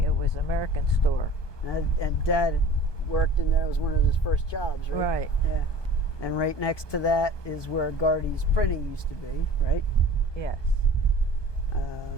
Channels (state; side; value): late; right; 1.2 ms